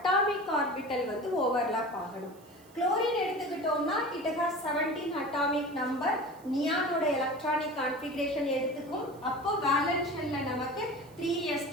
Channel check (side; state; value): right; noise; hiss, 27 dB below the sound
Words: ஆர்பிட்டல் வந்து ஓவர்லாப் ஆகணும். குளோரின் எடுத்துக்கிட்டோம்னா இட் ஹாஸ் 17 அட்டாமிக் நம்பர். நியானோட எலக்ட்ரானிக் கான்ஃபிகரேஷன் எடுத்துக்கும். அப்போ வேலன்ஸ் ஷெல்ல நமக்கு